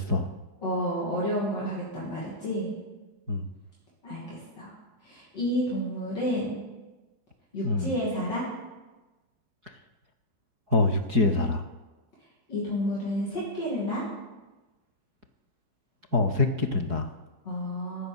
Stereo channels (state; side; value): late; left; 4.7 ms